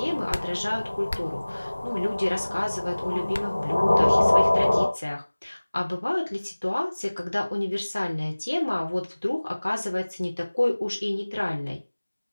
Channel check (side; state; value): both; inverted; correlation -1.00